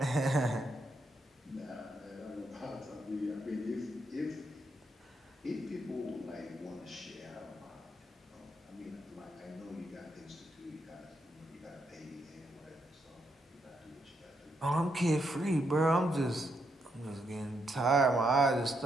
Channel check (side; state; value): both; normal; correlation 0.79